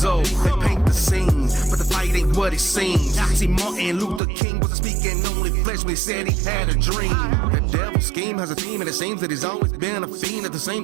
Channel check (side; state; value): left; drops out; at 4.2 s